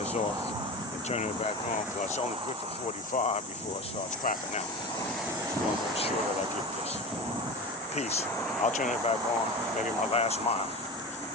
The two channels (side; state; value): both; normal; correlation 0.28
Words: off and turn it back on, because it's only good for 45 before it starts crapping out. I'm going to make sure that I get this. Peace. I'll turn it back on, maybe my last mile.